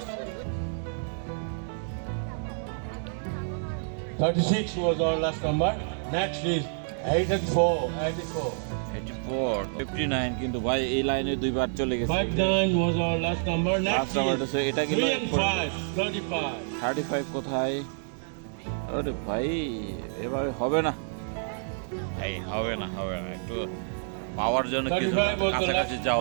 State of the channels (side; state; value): left; silent; 59 dB below the other